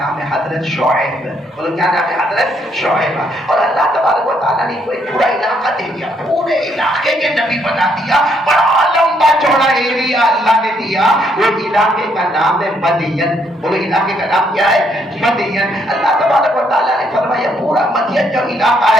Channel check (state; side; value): normal; both; correlation 0.71